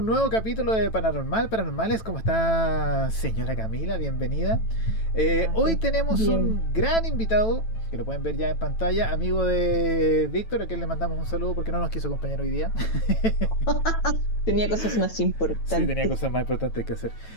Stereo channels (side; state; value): right; late; 9.1 ms